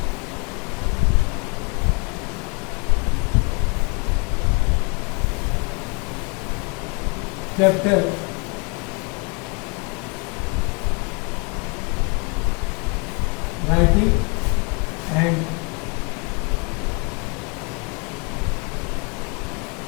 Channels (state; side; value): quieter; right; 33.8 dB